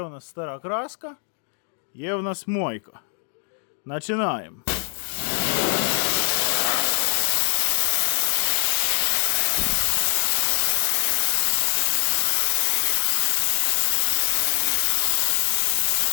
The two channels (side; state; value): right; silent; digital silence